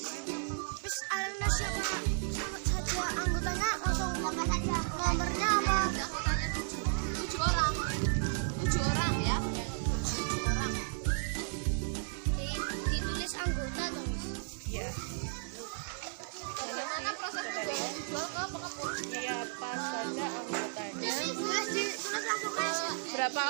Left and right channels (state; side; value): silent; left; digital silence